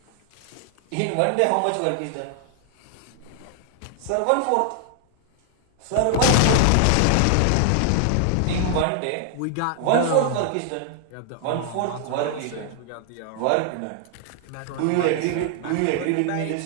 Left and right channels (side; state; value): both; different; correlation 0.00